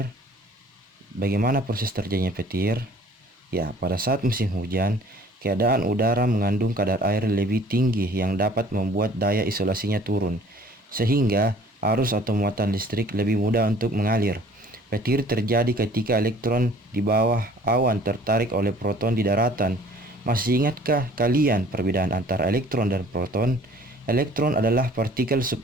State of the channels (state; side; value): normal; both; correlation 0.52